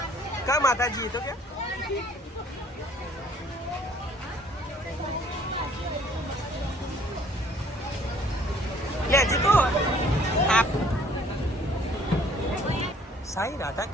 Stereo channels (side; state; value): both; normal; correlation 0.58